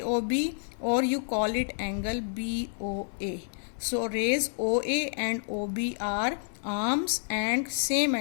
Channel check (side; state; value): right; silent; digital silence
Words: or you call it angle BOA. So, rays OA and OB are arms and same